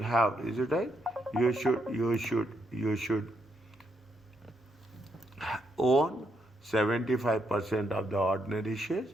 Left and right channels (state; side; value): normal; both; correlation 0.78